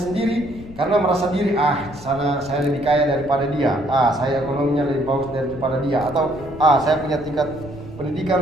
karena merasa diri, sana saya lebih kaya daripada dia, saya ekonominya lebih bagus daripada dia, atau saya punya tingkat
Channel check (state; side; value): noise; left; rumble, 17 dB below the sound